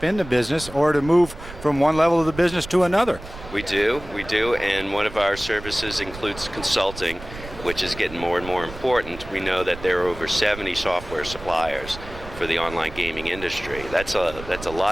in the business or to move from one level of the business to another. We do, and one of our services includes consulting, which is getting more and more important. We know that there are over 70 software suppliers for the online gaming industry. That's a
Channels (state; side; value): noise; right; rumble, 14 dB below the sound